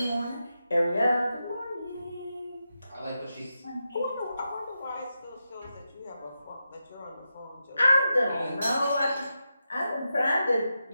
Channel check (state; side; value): inverted; both; correlation -0.88